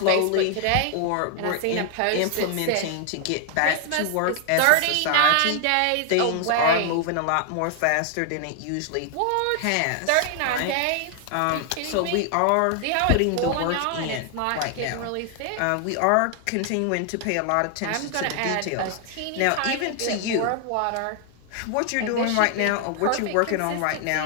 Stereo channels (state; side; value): different; both; correlation 0.00